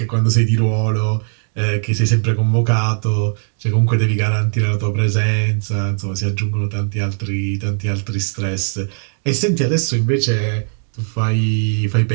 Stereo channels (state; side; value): silent; left; 59 dB below the other